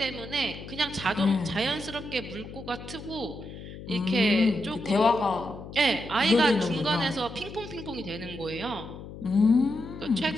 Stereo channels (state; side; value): noise; left; hum, 13 dB below the sound